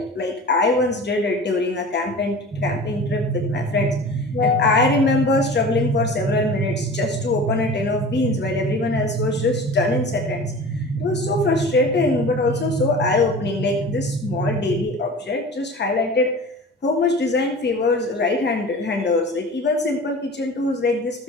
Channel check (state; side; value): normal; both; correlation 0.38